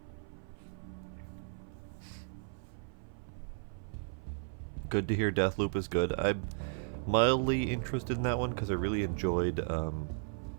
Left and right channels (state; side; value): silent; left; 54 dB below the other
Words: Good to hear Deathloop is good. I'm mildly interested in that one because I really enjoyed